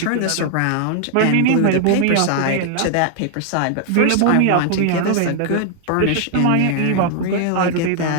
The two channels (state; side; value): different; both; correlation 0.00